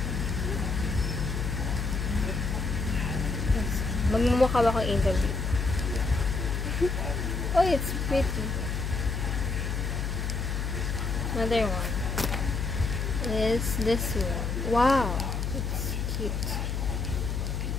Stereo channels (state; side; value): noise; left; hum, 1 dB below the sound